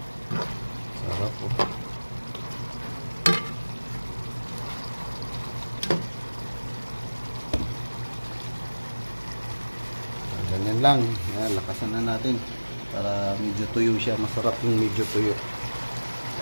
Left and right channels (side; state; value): both; inverted; correlation -1.00